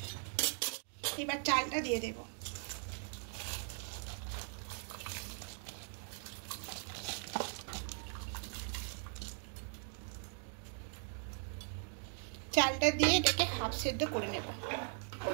এবার চালটা দিয়ে দেব। চালটা দিয়ে এটাকে হাফ সেদ্ধ করে নেব।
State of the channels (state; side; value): silent; left; 51 dB below the other